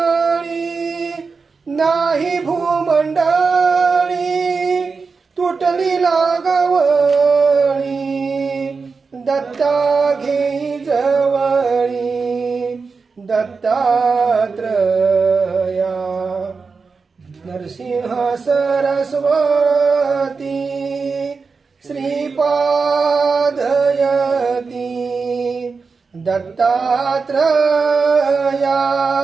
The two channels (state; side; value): quieter; left; 4.7 dB